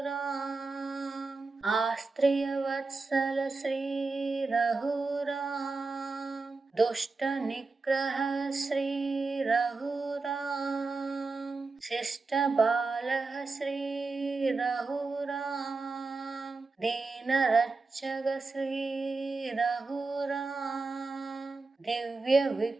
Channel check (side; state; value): left; quieter; 3.8 dB